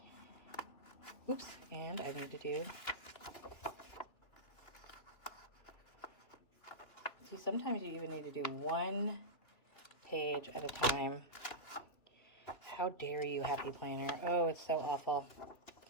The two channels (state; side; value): late; right; 2.9 ms